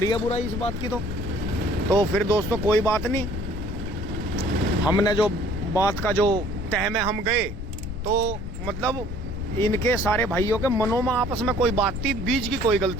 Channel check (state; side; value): noise; left; rumble, 7 dB below the sound